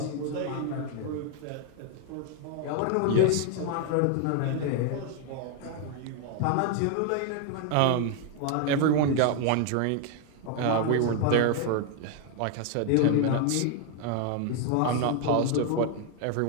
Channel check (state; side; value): different; both; correlation 0.00